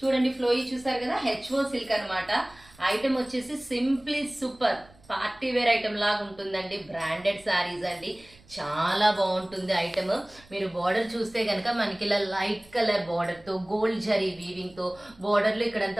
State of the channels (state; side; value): noise; right; rumble, 26 dB below the sound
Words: చూడండి, ఫ్లోయి చూసారు కదా, హెచ్ఓ సిల్క్ అనమాట. ఐటమ్ వచ్చేసి simply super party wear item లాగా ఉంటుందండి. బ్రాండెడ్ శారీస్ అండి, చాలా బాగుంటుంది ఐటమ్. మీరు బార్డర్ చూస్తే కనుక మనకి ఇలా లైట్ కలర్ బార్డర్ తో గోల్డ్ జరీ వీవింగ్ తో బార్డర్ లో